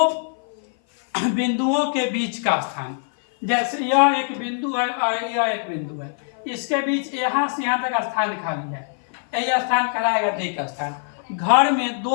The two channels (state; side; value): silent; right; 56 dB below the other